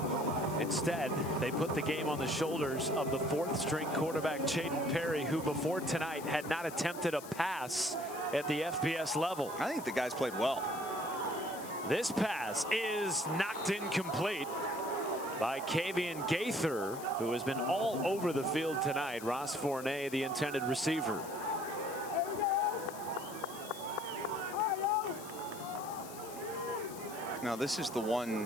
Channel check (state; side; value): noise; left; hiss, 15 dB below the sound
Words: Instead, they put the game on the shoulders of the 4th-string quarterback, Chayden Perry, who before tonight had not attempted a pass at the FBS level. I think the guys played well. This pass is knocked incomplete by Kavian Gaither, who has been all over the field tonight. Ross Fournette, the intended receiver. Now, this is the